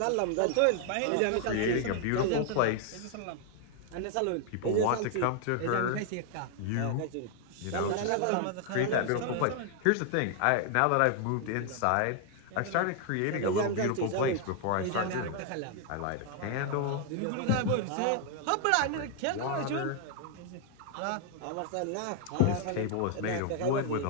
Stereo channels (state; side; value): different; both; correlation 0.00